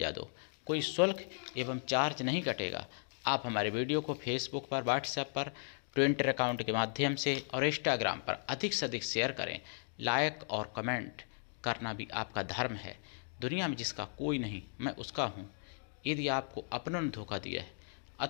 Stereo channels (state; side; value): silent; right; digital silence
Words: दो। कोई शुल्क एवं चार्ज नहीं कटेगा। आप हमारे वीडियो को फेसबुक पर, व्हाट्सएप पर, ट्विटर अकाउंट के माध्यम से और इंस्टाग्राम पर अधिक से अधिक शेयर करें। लाइक और कमेंट करना भी आपका धर्म है। दुनिया में जिसका कोई नहीं, मैं उसका हूँ। यदि आपको अपनों ने धोखा दिया है